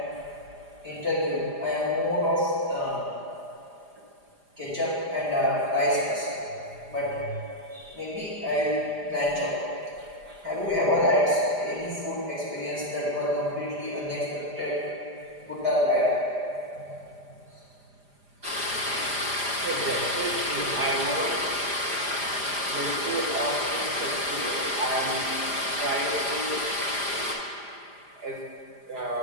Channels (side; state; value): left; late; 4.9 ms